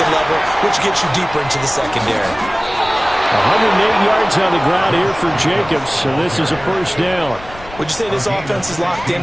level, which gets you deeper into the secondary. 108 yards on the ground here for Jacobs, and this is a first down. Would you say this offense is locked in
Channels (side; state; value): left; noise; rumble, 18 dB below the sound